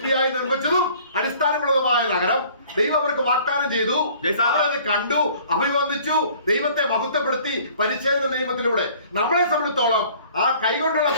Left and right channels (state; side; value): inverted; both; correlation -0.53